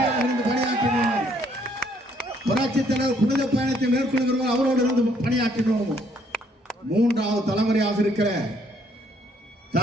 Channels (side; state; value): both; normal; correlation 0.67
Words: இருந்து பணியாற்றினோம், புரட்சி தலைவர் புனித பயணத்தை மேற்கொள்கிறோம், அவரோடு இருந்து பணியாற்றினோம். மூன்றாவது தலைமுறையாக இருக்கிற